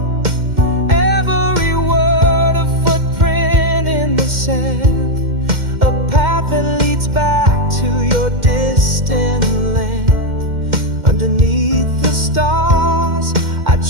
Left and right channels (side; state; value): left; late; 2.1 ms